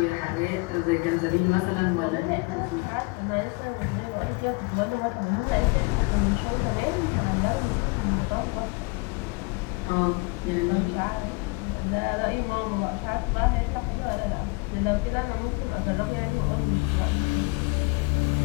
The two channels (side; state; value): right; quieter; 27.4 dB